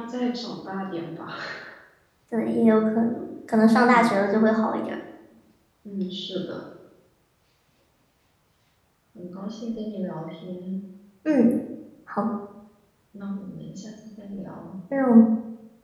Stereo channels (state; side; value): identical; both; correlation 1.00